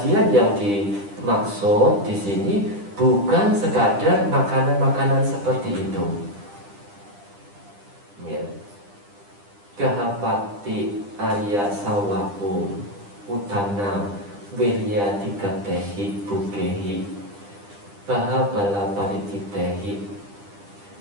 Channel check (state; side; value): late; left; 10 ms